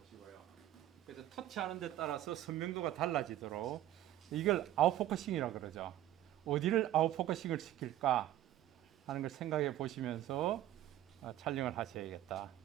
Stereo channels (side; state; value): left; quieter; 13.2 dB